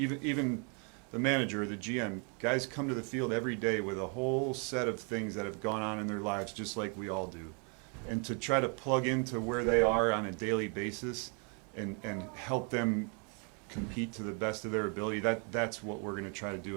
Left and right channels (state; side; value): quieter; left; 36.9 dB